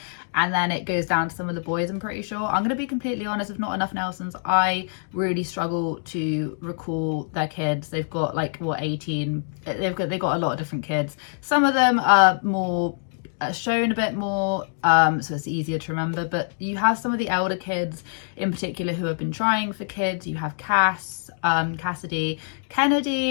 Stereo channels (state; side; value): silent; right; digital silence